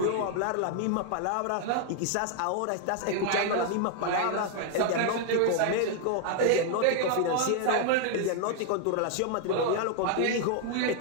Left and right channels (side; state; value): both; different; correlation 0.00